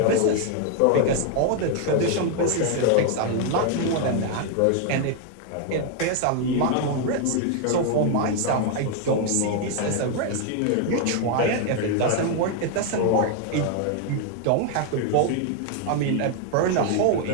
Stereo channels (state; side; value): different; both; correlation 0.00